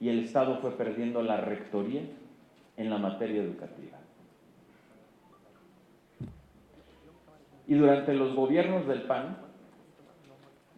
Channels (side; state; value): both; identical; correlation 1.00